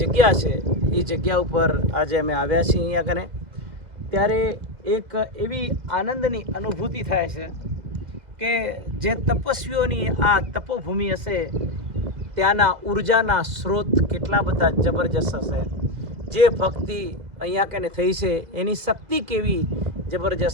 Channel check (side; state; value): left; late; 2.0 ms